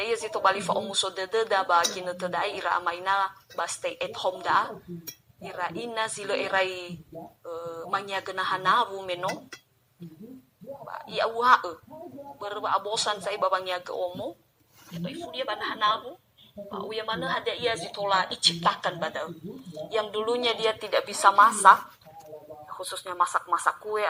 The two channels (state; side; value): identical; both; correlation 1.00